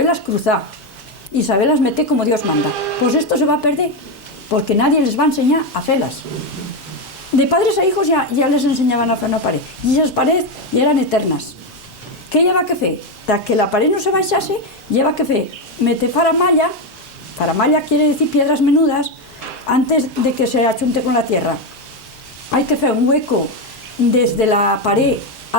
cruzar y saberlas meter como Dios manda. Pues esto se va a perder, porque nadie les va a enseñar a hacerlas. De padres a hijos ya les enseñaban a hacer una pared, y esas paredes ya eran eternas. ¿Qué lleva que fer? Para que la pared no se baixase, lleva que fer meter faramalla. Faramalla quiere decir piedras menudas antes de que se achunte con la tierra. Hay que hacer un hueco desde la pared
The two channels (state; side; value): normal; both; correlation 0.09